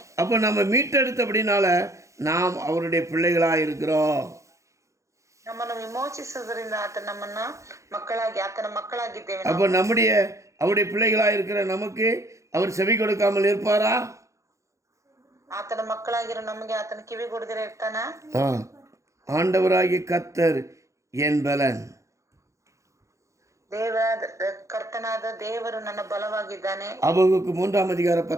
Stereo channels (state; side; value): late; left; 0.15 ms